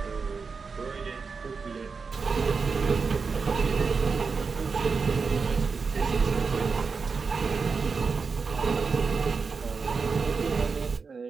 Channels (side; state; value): left; quieter; 5.0 dB